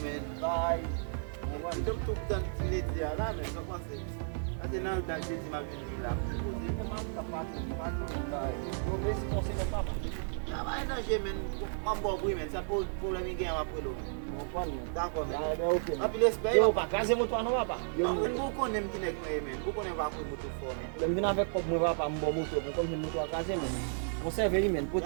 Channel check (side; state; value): left; silent; digital silence